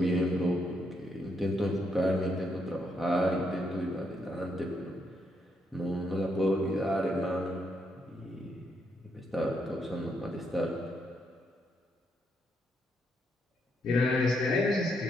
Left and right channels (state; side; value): normal; both; correlation 0.77